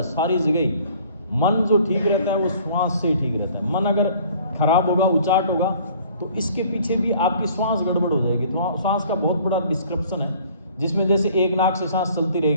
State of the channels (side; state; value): both; inverted; correlation -0.53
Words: सारी जगह ही। मन जो ठीक रहता है वो श्वास से ही ठीक रहता है। मन अगर खराब होगा, उचाट होगा, तो इसके पीछे भी आपकी श्वास गड़बड़ हो जाएगी। तो श्वास का बहुत बड़ा डिस्क्रिप्शन है, जिसमें जैसे एक नाक से सांस चलती